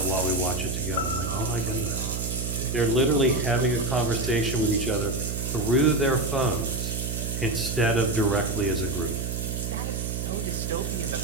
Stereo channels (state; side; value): noise; right; hum, 3 dB below the sound